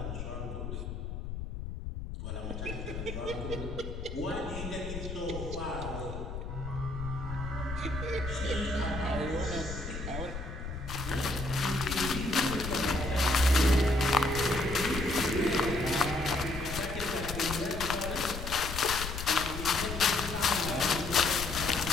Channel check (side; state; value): left; noise; rumble, 7 dB below the sound